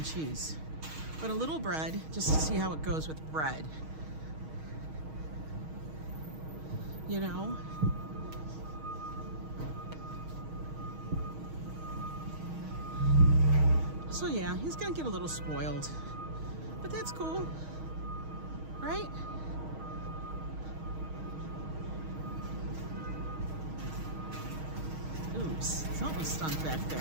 cheese. But a little bread, just to see how it goes with bread. You know? So yeah, he's gonna get a little spoiled. But that's cool. Right? Oops, something stunk back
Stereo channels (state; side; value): late; left; 6.4 ms